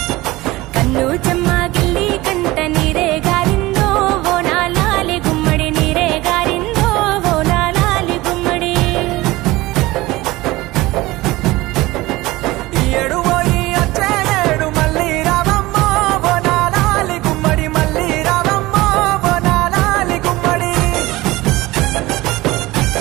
కన్ను చెమ్మ గిల్లి కంట నీరే గారిందో ఓనాలాలి గుమ్మడి నీరే గారిందో ఓనాలాలి గుమ్మడి ఈ ఏడు పోయి వచ్చే ఏడు మళ్ళీ రావమ్మో బోనాలాలి గుమ్మడి మళ్ళీ రావమ్మో బోనాలాలి గుమ్మడి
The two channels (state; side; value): quieter; left; 19.5 dB